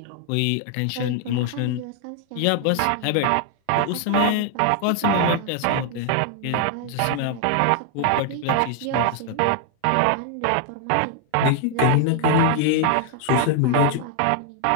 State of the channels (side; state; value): both; different; correlation 0.00